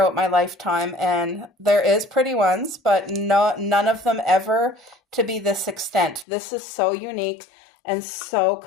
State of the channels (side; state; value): right; drops out; at 6.2 s